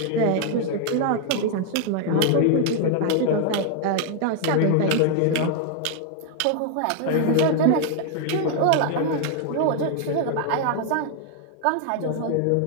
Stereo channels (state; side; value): different; both; correlation 0.00